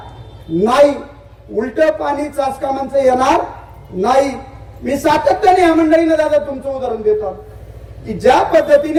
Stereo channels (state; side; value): identical; both; correlation 1.00